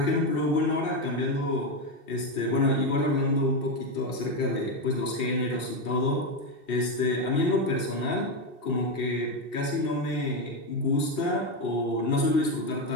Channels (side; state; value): right; late; 2.7 ms